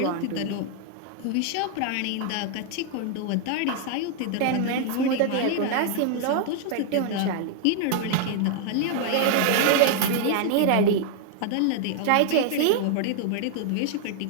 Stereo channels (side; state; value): both; different; correlation 0.00